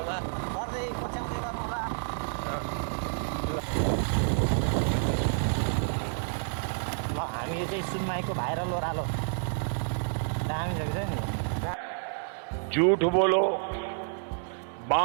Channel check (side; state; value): left; silent; 58 dB below the other